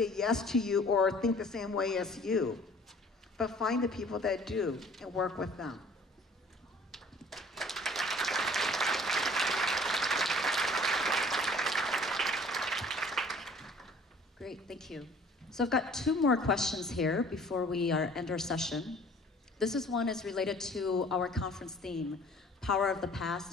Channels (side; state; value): both; normal; correlation 0.52